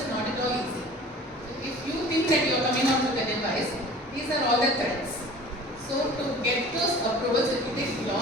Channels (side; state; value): both; normal; correlation 0.44